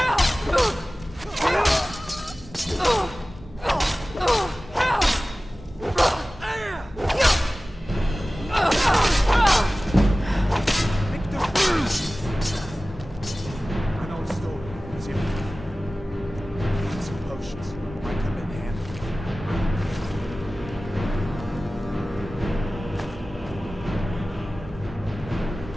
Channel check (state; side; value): normal; both; correlation 0.97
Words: An old story. See, some potions might come in handy.